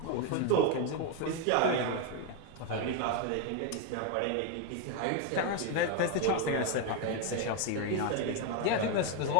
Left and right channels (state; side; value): different; both; correlation 0.01